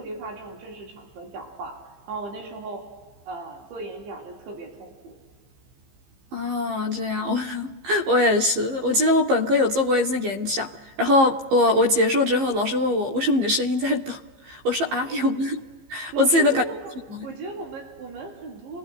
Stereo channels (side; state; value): left; late; 15 ms